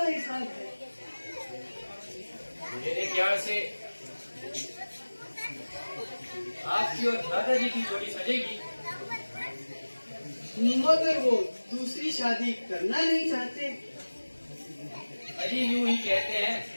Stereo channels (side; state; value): both; inverted; correlation -1.00